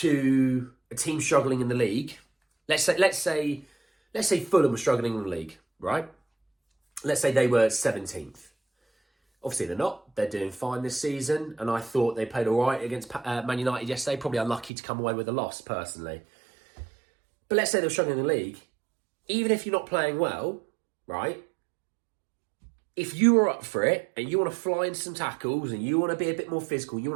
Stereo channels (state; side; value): drops out; left; at 14.7 s